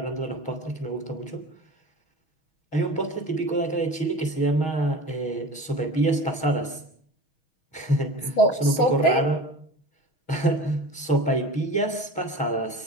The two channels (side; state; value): right; late; 6.3 ms